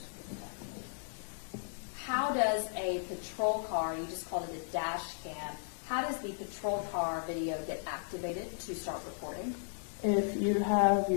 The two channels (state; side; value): silent; right; digital silence